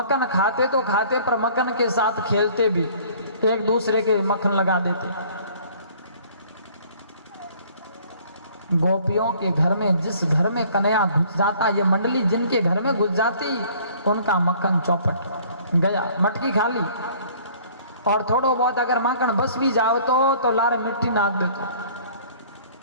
खाते तो खाते पर मक्खन के साथ खेलते भी, एक दूसरे के मक्खन लगा देते। गोपियों के घर में जिस घर में कन्हैया घुस जाता, ये मंडली जिनके घर में घुस जाती उनका मक्खन चौपट गया, मटकी खा ली। और थोड़ो बहुत अगर माखन बस भी जाओ तो लारे मिट्टी नाक देते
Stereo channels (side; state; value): both; inverted; correlation -0.54